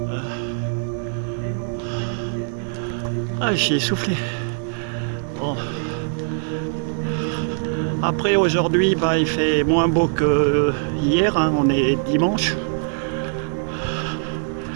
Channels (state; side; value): silent; left; digital silence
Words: Ah, j'y ai soufflé. Bon. Après, aujourd'hui, bah, il fait moins beau que hier. Hein. On est dimanche.